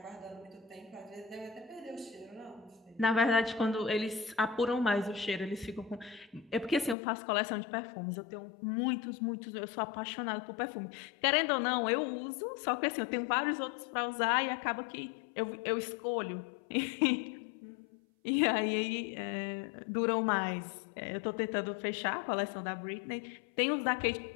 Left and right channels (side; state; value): right; drops out; at 7.0 s